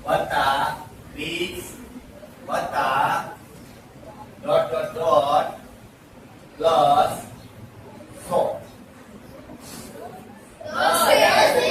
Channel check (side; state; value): both; identical; correlation 1.00